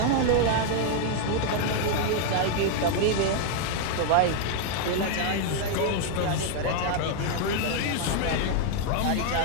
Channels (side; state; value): both; different; correlation 0.00